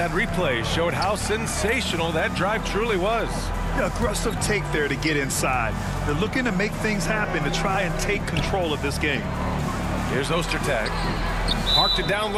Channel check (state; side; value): identical; both; correlation 1.00